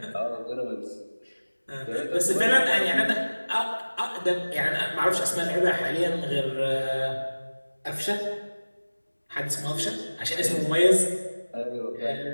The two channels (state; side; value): inverted; both; correlation -1.00